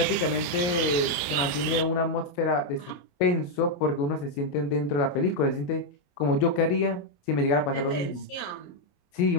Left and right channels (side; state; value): right; late; 28 ms